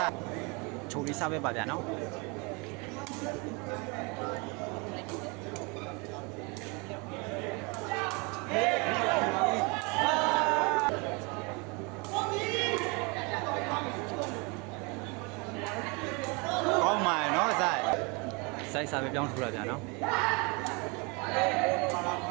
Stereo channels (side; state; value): left; quieter; 29.8 dB